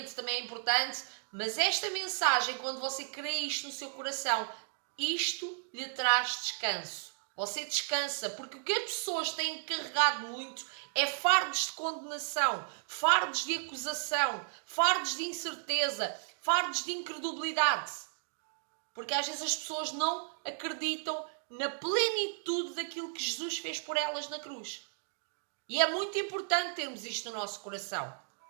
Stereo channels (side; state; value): left; silent; digital silence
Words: também é importante, mas esta mensagem, quando você crê isto no seu coração, isto lhe traz descanso. Você descansa, porque o que as pessoas têm carregado muito é fardos de condenação, fardos de acusação, fardos de incerteza, fardos de incredulidade. Porque às vezes as pessoas não acreditam na plenitude daquilo que Jesus fez por elas na cruz. E é muito importante termos isto no nosso coração.